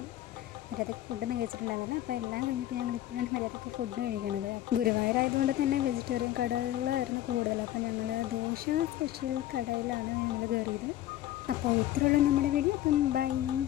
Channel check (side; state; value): right; quieter; 13.6 dB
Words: മര്യാദയ്ക്ക് ഫുഡൊന്നും കഴിച്ചിട്ടുണ്ടായിരുന്നില്ല. അപ്പോൾ എല്ലാം കഴിഞ്ഞിട്ട് ഞങ്ങൾ ഇപ്പോഴാണ് മര്യാദയ്ക്ക് ഫുഡ് കഴിക്കണത്. ഗുരുവായൂരായതുകൊണ്ട് തന്നെ വെജിറ്റേറിയൻ കടകളായിരുന്നു കൂടുതൽ. അപ്പോൾ ഞങ്ങൾ ദോശ സ്പെഷ്യൽ കടയിലാണ് ഞങ്ങൾ കയറിയത്. അപ്പോൾ ഇത്രയുള്ള നമ്മുടെ വീഡിയോ. അപ്പം ബൈ.